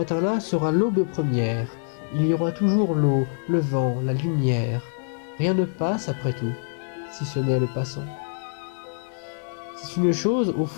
sera l'aube première. Il y aura toujours l'eau, le vent, la lumière. Rien ne passe après tout, si ce n'est le passant. C'est une chose, au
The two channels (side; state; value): right; silent; digital silence